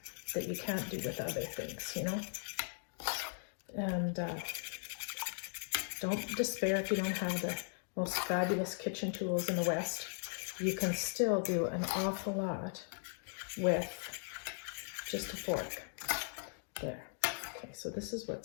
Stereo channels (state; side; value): silent; right; digital silence